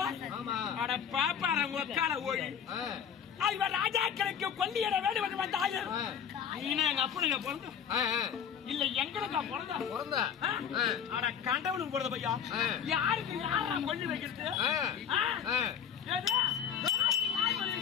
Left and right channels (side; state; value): right; quieter; 8.2 dB